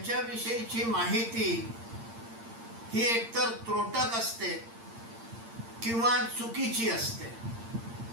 माहिती ही एकतर त्रोटक असते किंवा चुकीची असते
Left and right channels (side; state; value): left; late; 8.7 ms